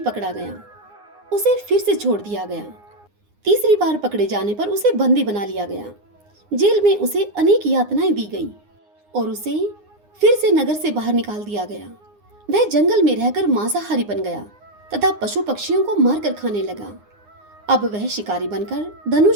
पकड़ा गया, उसे फिर से छोड़ दिया गया। तीसरी बार पकड़े जाने पर उसे बंदी बना लिया गया। जेल में उसे अनेक यातनाएं दी गई और उसे फिर से नगर से बाहर निकाल दिया गया। वह जंगल में रहकर मांसाहारी बन गया तथा पशु पक्षियों को मारकर खाने लगा। अब वह शिकारी बनकर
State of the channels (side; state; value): left; late; 9.7 ms